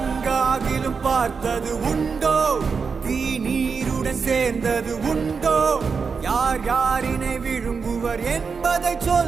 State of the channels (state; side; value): quieter; left; 5.4 dB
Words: பார்த்தது உண்டோ? தீ நீருடன் சேர்ந்தது உண்டோ? யார் யாரினை விழுங்குவர் என்பதை